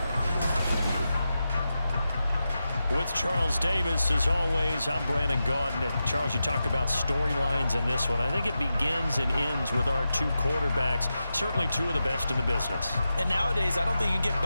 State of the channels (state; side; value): inverted; both; correlation -0.91